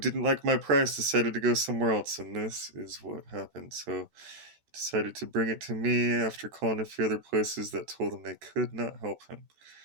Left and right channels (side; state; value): left; late; 13 ms